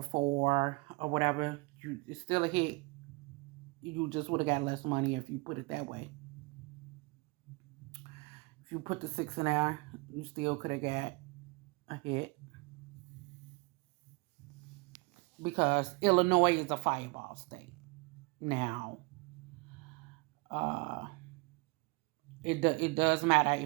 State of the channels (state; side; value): quieter; left; 27.6 dB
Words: or whatever, it's still a hit. You just would have got less money if you put it that way. If you put the 6 in there, you still could have got a hit. Because Illinois is a fireball state. Now, it does matter